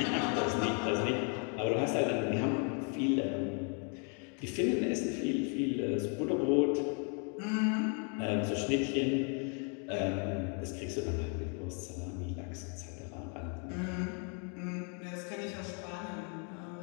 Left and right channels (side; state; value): right; quieter; 39.3 dB